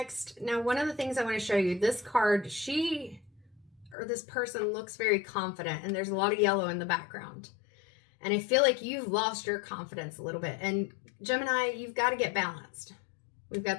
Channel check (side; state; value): right; drops out; at 4.0 s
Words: Now, one of the things I want to show you, this card, this person looks very confident, and there's a lot of yellow in the background. And I feel like you've lost your confidence a little bit. And Gemini, you've got to get balanced. We've